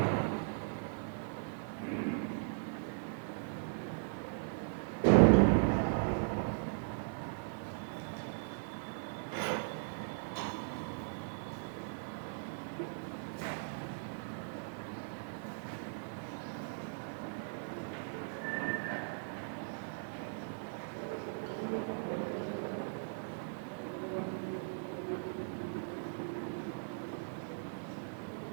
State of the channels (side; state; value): left; silent; 52 dB below the other